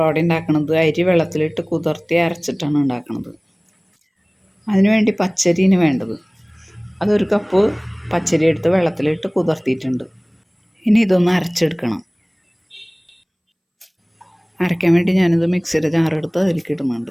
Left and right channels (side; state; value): both; identical; correlation 1.00